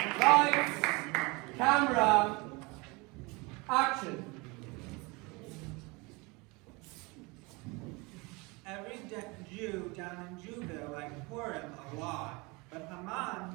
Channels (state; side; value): quieter; left; 26.4 dB